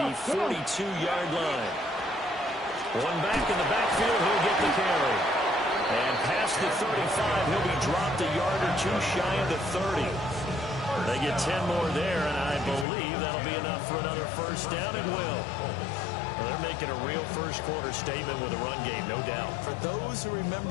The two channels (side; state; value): right; drops out; at 12.9 s